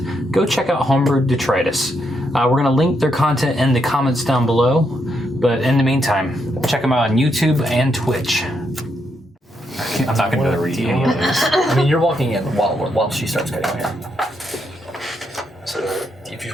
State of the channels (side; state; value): both; normal; correlation 0.79